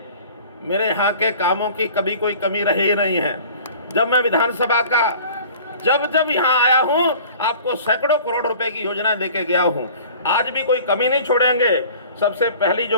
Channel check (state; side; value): inverted; both; correlation -0.46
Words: मेरे यहाँ के कामों की कभी कोई कमी रही ही नहीं है। जब मैं विधानसभा का जब यहाँ आया हूँ, आपको सैकड़ों करोड़ रुपए की योजना देके गया हूँ। आज भी कोई कमी नहीं छोड़ेंगे। सबसे पहली